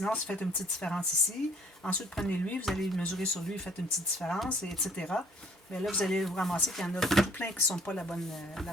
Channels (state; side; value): normal; both; correlation 0.59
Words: si vous faites une petite différence ici, ensuite, prenez lui, vous allez mesurer sur lui, faites une petite différence, et etc. Mais là, vous allez vous ramasser qu'il y en a tout plein qui ne sont pas la bonne